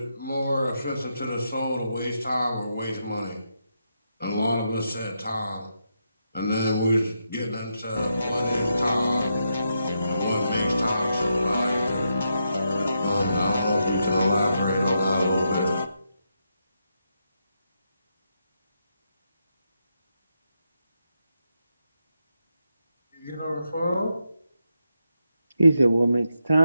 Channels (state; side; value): inverted; both; correlation -0.83